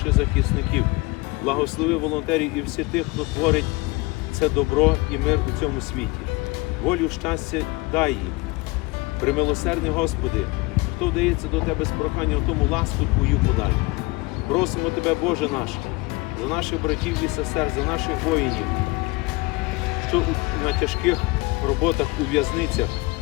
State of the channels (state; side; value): quieter; right; 24.3 dB